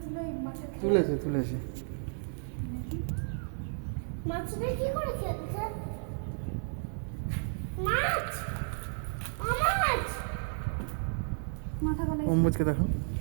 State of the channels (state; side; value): silent; left; digital silence